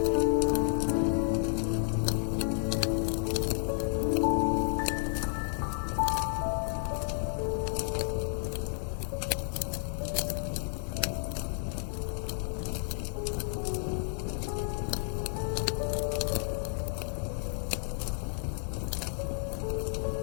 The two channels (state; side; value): silent; right; digital silence